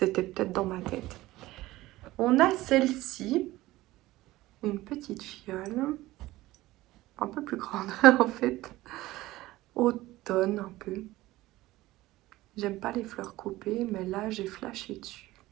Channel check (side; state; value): left; quieter; 17.6 dB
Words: peut-être dans ma tête. On a celle-ci, une petite fiole, un peu plus grande en fait, automne un peu. J'aime pas les fleurs coupées, mais là j'ai flashé dessus.